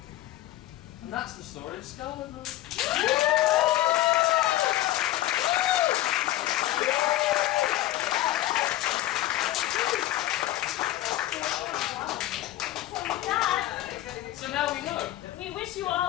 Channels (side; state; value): right; quieter; 15.2 dB